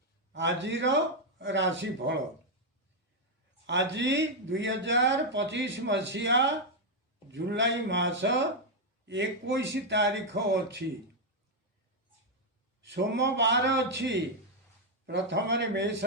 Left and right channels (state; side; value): normal; both; correlation 0.00